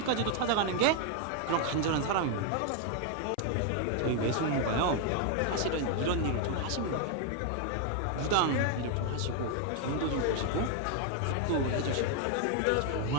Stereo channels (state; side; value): different; both; correlation 0.00